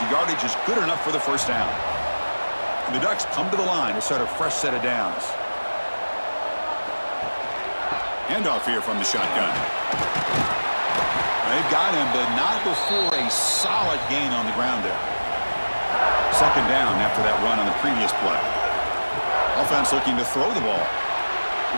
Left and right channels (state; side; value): inverted; both; correlation -1.00